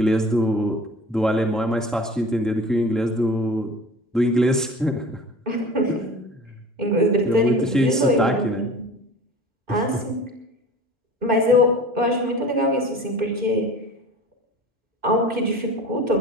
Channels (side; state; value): both; normal; correlation 0.39